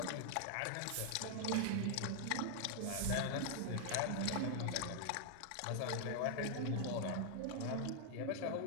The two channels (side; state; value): both; different; correlation 0.00